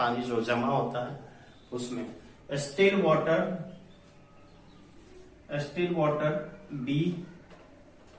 जो जमा होता है उसमें still water be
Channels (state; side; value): identical; both; correlation 1.00